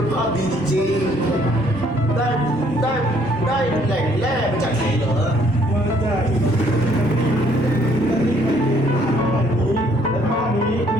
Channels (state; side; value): normal; both; correlation 0.64